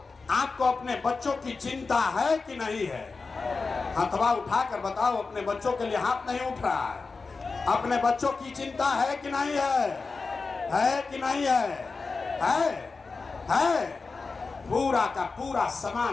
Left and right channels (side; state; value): right; quieter; 4.3 dB